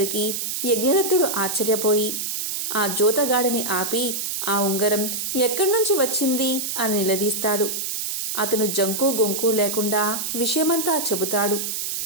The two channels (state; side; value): noise; right; hiss, 3 dB below the sound